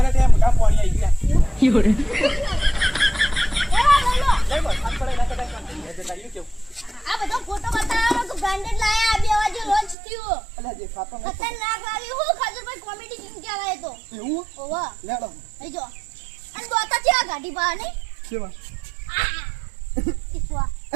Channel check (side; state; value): left; drops out; at 10.0 s